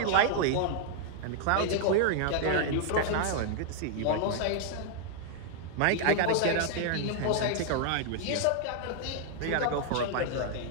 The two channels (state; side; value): different; both; correlation 0.00